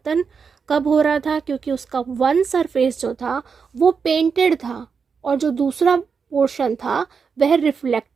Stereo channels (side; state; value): left; quieter; 5.8 dB